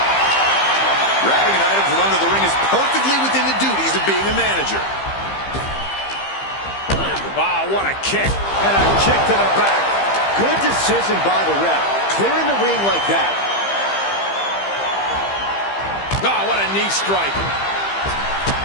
Grabbing an item from under the ring is perfectly within the duties of being a manager. Wow, what a kick. And a kick to the back. Good decision by the ref. Clearing the ring like that. Oh, what a knee strike.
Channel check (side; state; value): right; late; 15 ms